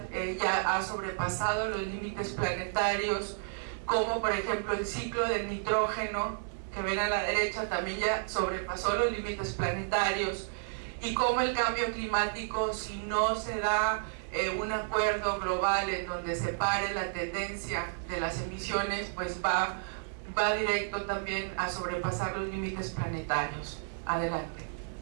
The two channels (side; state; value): left; silent; digital silence